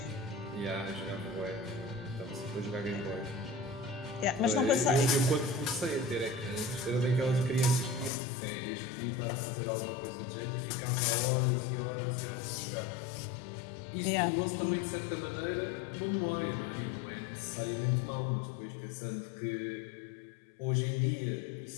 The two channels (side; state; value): right; drops out; at 8.1 s